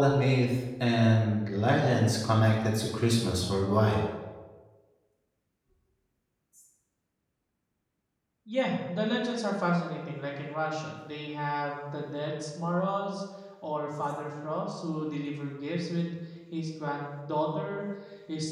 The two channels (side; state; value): both; identical; correlation 1.00